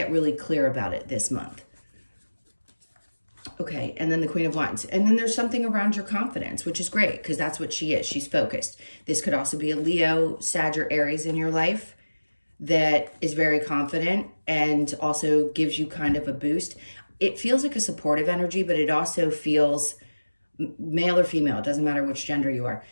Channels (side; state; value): both; inverted; correlation -1.00